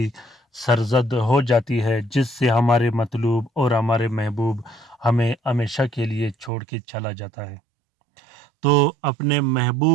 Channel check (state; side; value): drops out; left; at 6.5 s